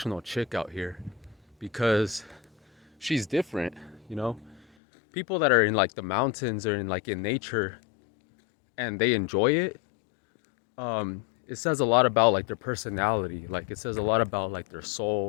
chick out here because she's different, you know? People that are in like the mountains or in like in nature and they enjoy it, it says a lot about like their personality. Like, it says a lot about like their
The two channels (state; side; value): drops out; right; at 4.6 s